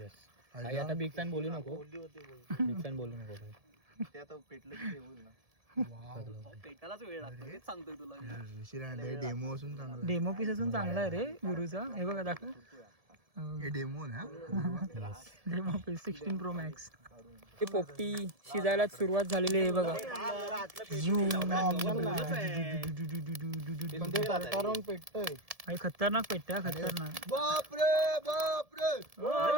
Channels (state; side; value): late; left; 1.7 ms